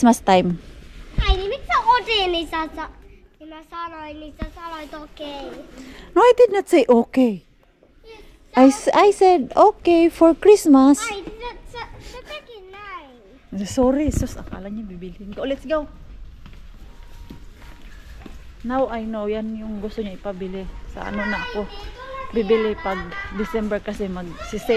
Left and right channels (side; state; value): both; identical; correlation 1.00